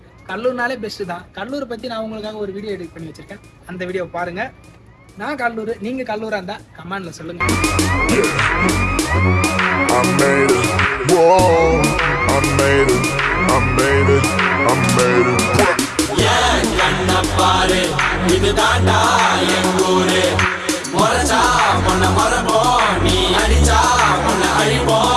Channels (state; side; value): identical; both; correlation 1.00